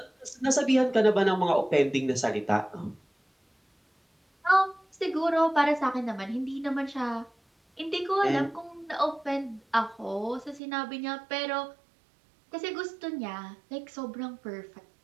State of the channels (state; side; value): drops out; left; at 10.6 s